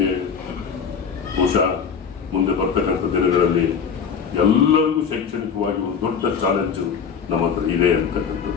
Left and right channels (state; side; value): quieter; right; 6.6 dB